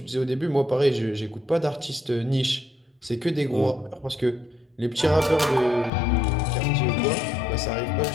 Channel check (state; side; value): drops out; right; at 5.9 s